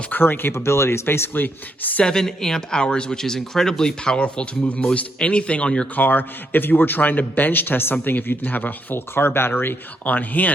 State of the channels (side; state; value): both; normal; correlation 0.77